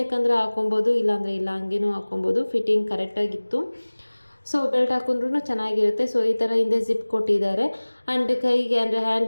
ಹಾಕೊಬೋದು, ಇಲ್ಲಾಂದರೆ ಇಲ್ಲ, ಹಂಗೇನೂ ಹಾಕೊಬೋದು. ಫಿಟ್ಟಿಂಗ್ ಕರೆಕ್ಟಾಗಿತ್ತು. ಸೊ ಬೆಲ್ಟ್ ಹಾಕೊಂಡ್ರೂ ಚೆನ್ನಾಗಿರುತ್ತೆ. ಸೊ ಈ ಥರ ಹಿಂದೆ ಜಿಪ್ ಕೊಟ್ಟಿದ್ದಾರೆ. ಆ್ಯಂಡ್ ಕೈಗೆ ಅಂದರೆ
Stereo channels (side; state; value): both; inverted; correlation -1.00